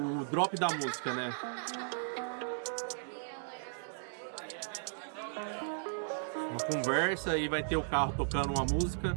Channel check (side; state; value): left; silent; digital silence